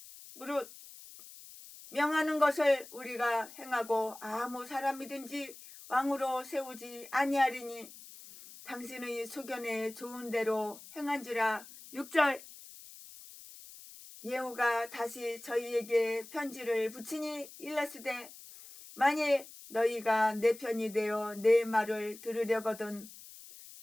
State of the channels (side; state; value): left; noise; hiss, 17 dB below the sound